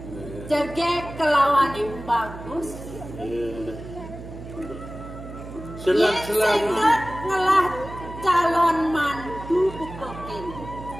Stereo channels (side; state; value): right; noise; hum, 12 dB below the sound